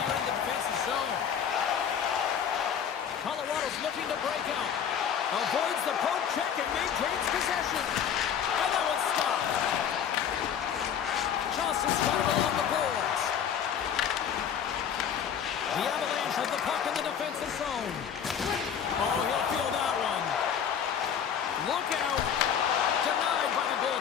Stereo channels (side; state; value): right; quieter; 8.2 dB